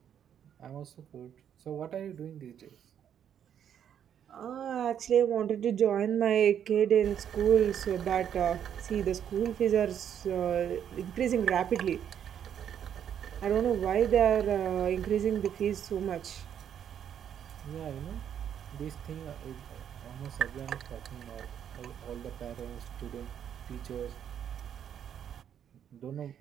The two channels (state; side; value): quieter; left; 9.1 dB